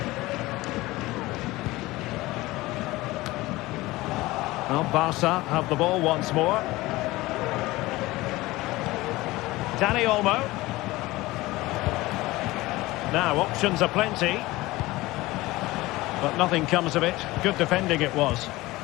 Well, Barca have the ball once more. Dani Olmo. Now, options are plenty. But nothing comes of it. Good defending it was.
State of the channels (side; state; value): right; quieter; 19.4 dB